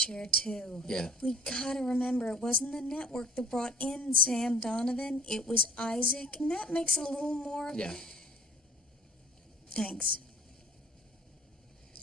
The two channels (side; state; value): both; normal; correlation 0.51